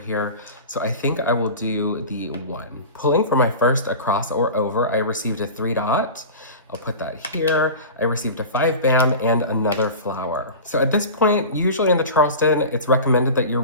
So I think I will do the 1. Pulling for my first across or over, I received a 3 dot. I'll put that here. I received a 5 bam and another flower. So at this point, usually in the Charleston, it's recommended that you're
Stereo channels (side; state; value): both; inverted; correlation -0.33